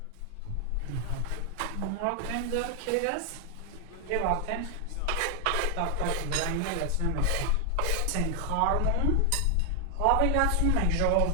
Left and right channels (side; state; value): both; different; correlation 0.00